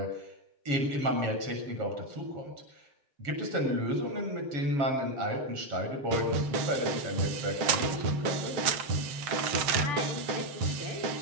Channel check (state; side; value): late; left; 7.7 ms